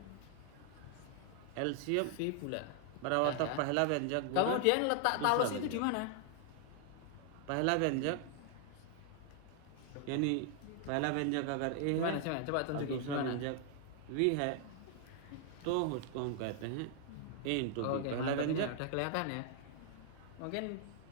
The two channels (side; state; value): both; different; correlation 0.00